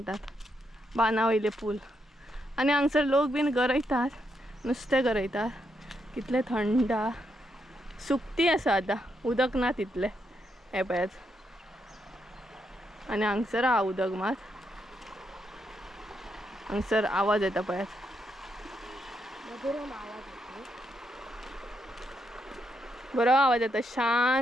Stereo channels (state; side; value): normal; both; correlation 0.79